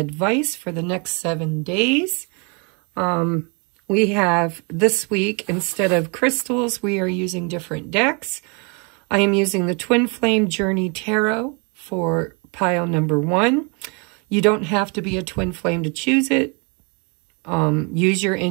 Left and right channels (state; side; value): quieter; left; 33.7 dB